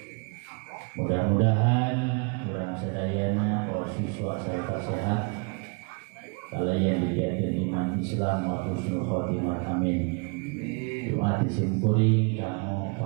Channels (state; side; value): quieter; left; 34.8 dB